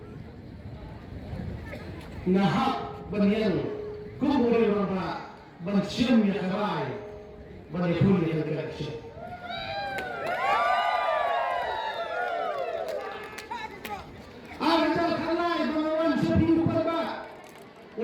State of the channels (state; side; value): identical; both; correlation 1.00